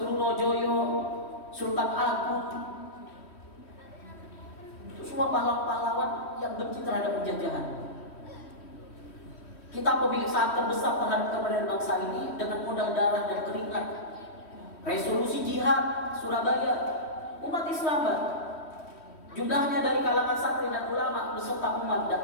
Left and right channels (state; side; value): late; right; 3.1 ms